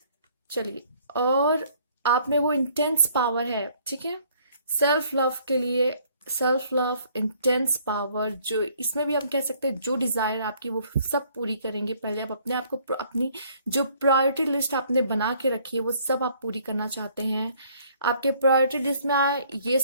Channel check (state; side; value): inverted; both; correlation -0.61